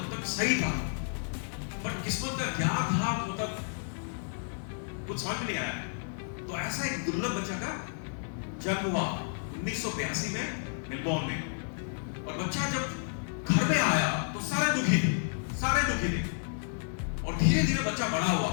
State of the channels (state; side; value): silent; right; digital silence